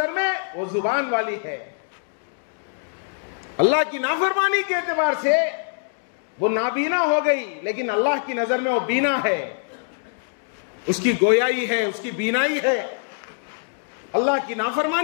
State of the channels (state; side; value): silent; right; digital silence